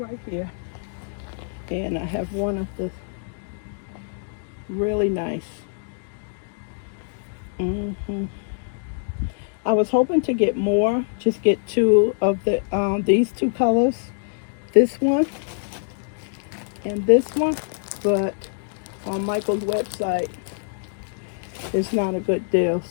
here. And I have one of the really nice. I was hoping to get more, just get two of the these two colors, this one and this one, but on Michael's website it's not a good deal.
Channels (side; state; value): right; silent; digital silence